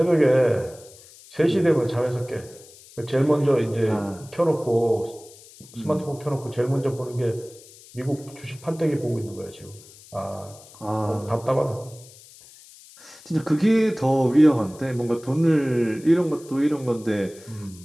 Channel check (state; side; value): noise; left; hiss, 22 dB below the sound